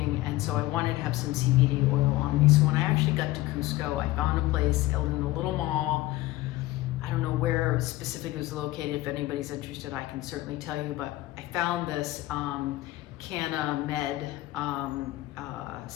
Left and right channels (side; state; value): right; quieter; 17.6 dB